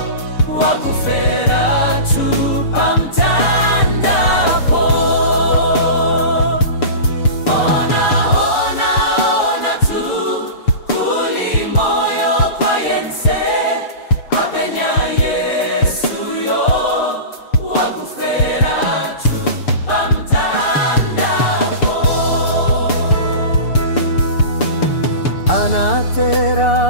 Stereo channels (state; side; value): late; right; 6.8 ms